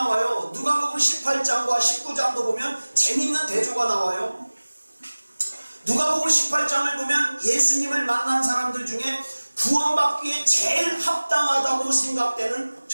누가복음 18장과 19장도 보면 재밌는 대조가 나와요. 누가복음 18장을 보면 예수님을 만난 사람들 중에 구원받기에 제일 합당하다고 생각되는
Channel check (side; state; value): both; inverted; correlation -1.00